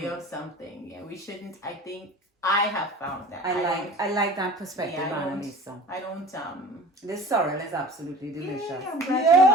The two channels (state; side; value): normal; both; correlation 0.40